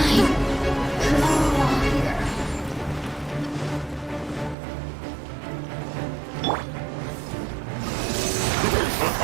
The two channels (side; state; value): left; drops out; at 4.5 s